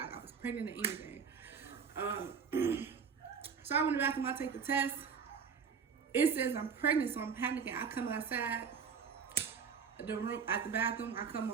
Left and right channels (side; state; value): left; quieter; 6.3 dB